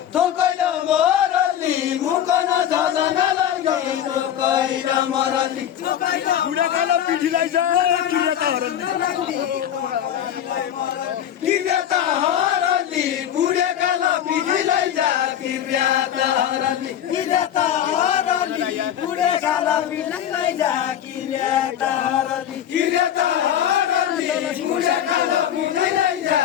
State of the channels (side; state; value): right; quieter; 10.3 dB